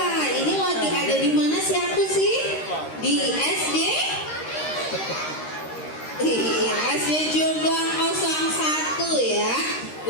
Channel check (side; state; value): right; late; 13 ms